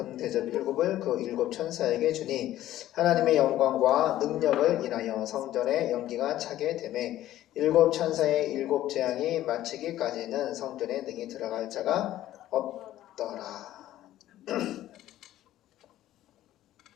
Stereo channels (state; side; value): quieter; right; 13.7 dB